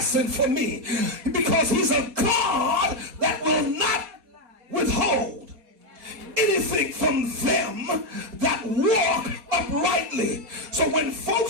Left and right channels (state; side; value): late; left; 4.2 ms